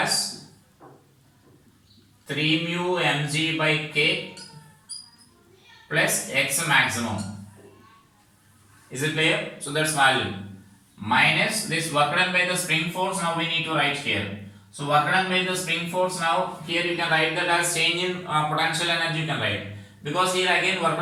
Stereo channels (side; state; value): both; identical; correlation 1.00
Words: 3 mu mg by k plus x maximum. Is it clear? So that's value minus this work done by the spring force. Now we need to write here. So work done by the spring force, now here you can write that as change in potential energy you can write. Because here again work